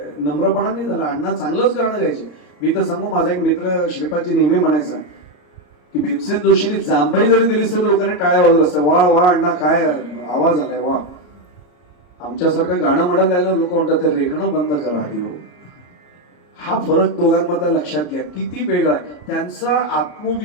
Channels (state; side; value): late; right; 34 ms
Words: नम्रपणा नाही झाला. अण्णा चांगलंच गाणं गायचे. मी तर सांगू, माझा एक मित्र श्रीपादजी नेहमी म्हणायचा की भीमसेन जोशींनी जांभई जरी दिली तरी लोकांनी टाळ्या वाजवल्या असत्या, वा वा अण्णा काय आवाज आलाय वा. आमच्यासारखं गाणं म्हणत राहिलं लोक म्हणतात ते रेखणं बंद करा आधी हो. हा फरक दोघांमधला लक्षात घ्या, किती वेगळा आहे. त्यांचा